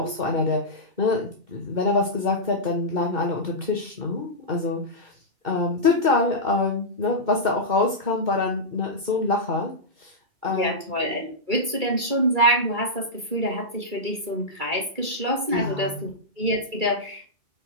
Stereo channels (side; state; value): left; late; 2.3 ms